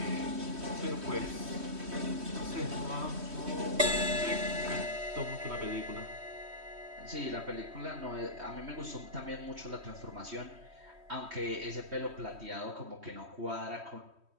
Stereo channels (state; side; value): late; left; 3.1 ms